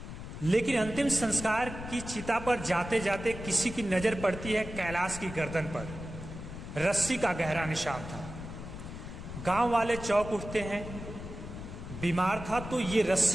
लेकिन अंतिम संस्कार की चिता पर जाते जाते किसी की नजर पड़ती है कैलाश की गर्दन पर। रस्सी का गहरा निशान था। गांव वाले चौंक उठते हैं। बीमार था तो ये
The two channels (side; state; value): left; noise; rumble, 10 dB below the sound